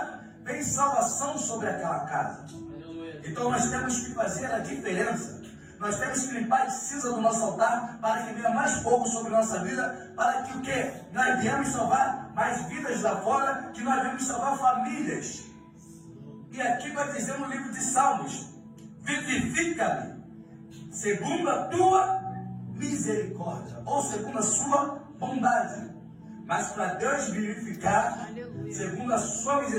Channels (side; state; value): both; identical; correlation 1.00